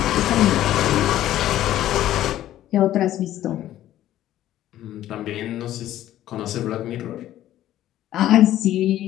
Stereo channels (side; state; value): right; quieter; 13.1 dB